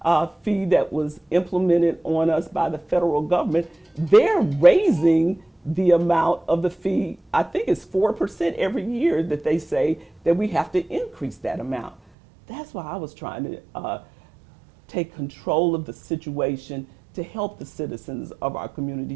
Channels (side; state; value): left; drops out; at 12.0 s